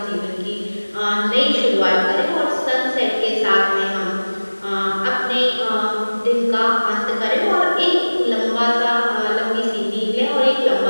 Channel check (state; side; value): inverted; both; correlation -1.00